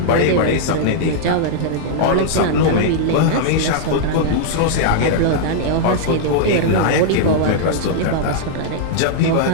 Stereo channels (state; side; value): different; both; correlation -0.01